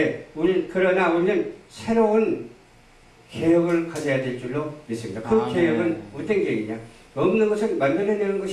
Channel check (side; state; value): both; identical; correlation 1.00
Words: 그러나 우리는 새로운 개혁을 가져야 될 줄로 믿습니다. 그 개혁은 어떤 개혁이냐? 없는 것을 만들어내는